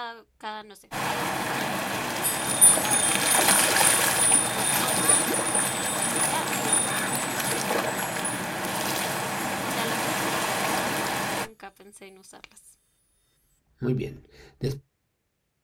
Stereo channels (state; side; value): identical; both; correlation 1.00